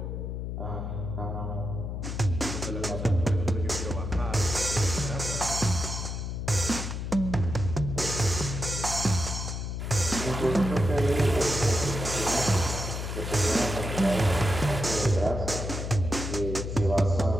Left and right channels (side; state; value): left; noise; hum, 4 dB below the sound